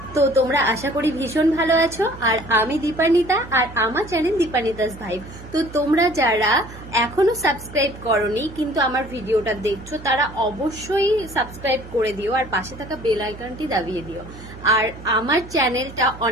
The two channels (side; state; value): right; noise; hum, 16 dB below the sound